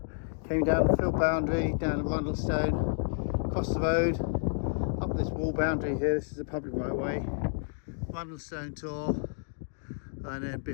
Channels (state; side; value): silent; right; digital silence